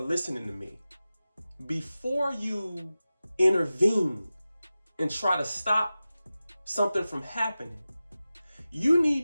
to me, before you intervene and try to stop something from happening, you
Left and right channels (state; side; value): inverted; both; correlation -0.95